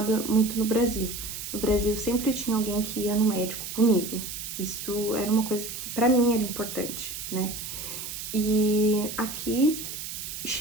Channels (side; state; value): right; noise; hiss, 7 dB below the sound